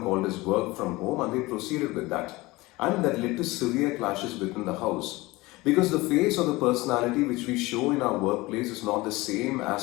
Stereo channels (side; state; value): right; quieter; 21.1 dB